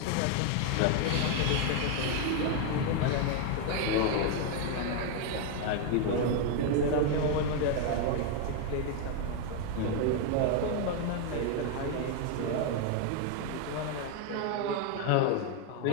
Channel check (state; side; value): different; both; correlation 0.01